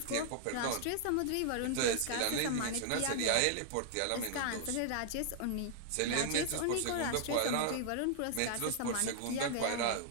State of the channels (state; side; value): different; both; correlation -0.01